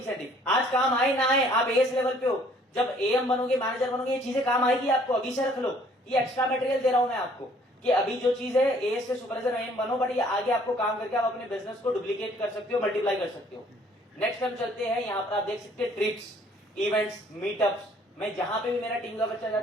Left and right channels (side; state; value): both; normal; correlation 0.59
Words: आज काम आए ना आए, आप एएस लेवल पे हो, जब एएम बनोगे, मैनेजर बनोगे, ये चीजें काम आएगी आपको। अभी से रख लो, ये एक्स्ट्रा मटेरियल दे रहा हूं मैं आपको कि अभी जो चीज है, एएस से सुपरवाइजर एएम बनो, बट ये आगे आपको काम करके आप अपने बिजनेस को डुप्लीकेट कर सकते हो, मल्टीप्लाई कर सकते हो। नेक्स्ट हम चलते हैं, यहाँ पर आप देख सकते हैं ट्रिप्स, इवेंट्स, मीटअप्स। मैं जहां पे भी मेरा टीम का बच्चा